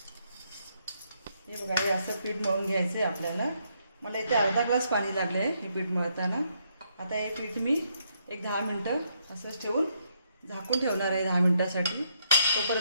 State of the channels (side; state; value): both; inverted; correlation -0.75